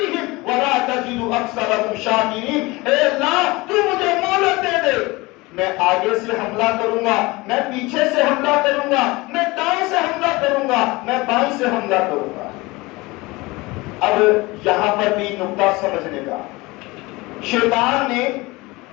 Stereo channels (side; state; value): right; quieter; 22.5 dB